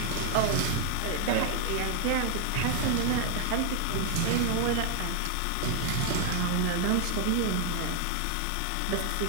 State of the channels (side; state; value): both; different; correlation 0.00